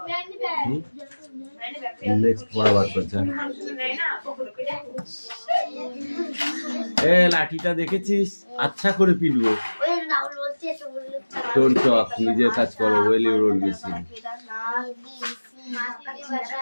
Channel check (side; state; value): both; inverted; correlation -1.00